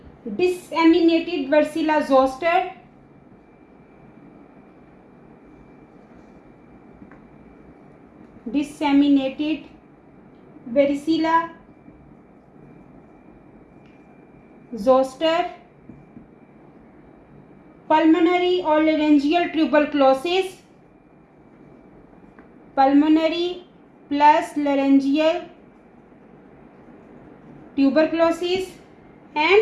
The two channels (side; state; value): both; identical; correlation 1.00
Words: disseminated varicella zoster. Disseminated varicella zoster. Pulmonary or laryngeal tuberculosis. Pulmonary plus laryngeal tuberculosis